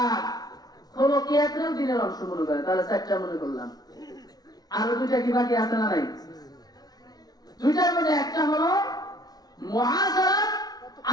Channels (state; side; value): late; right; 0.19 ms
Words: খলকিয়াতেও দিনের অংশ মনে করে। তাহলে 4টা মনে করলাম। আরো 2টা কি বাকি আছে না নাই? 2টার মধ্যে একটা হলো মুআশারাত